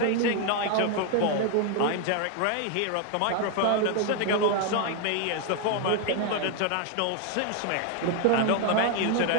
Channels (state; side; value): different; both; correlation 0.01